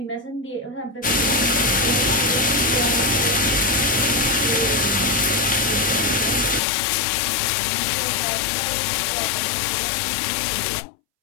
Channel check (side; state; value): right; drops out; at 6.6 s